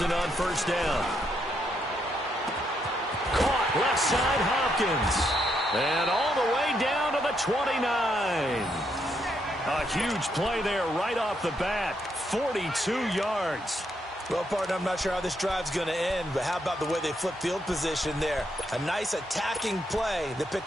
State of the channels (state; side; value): normal; both; correlation 0.77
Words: on first down. Caught left side, Hopkins. And all the way down to the 29. A huge play there right off the bat. 42 yards. Well, partner, I'm not sure how this drive's going to end, but how about the way they flipped field position there? A nice attacking play that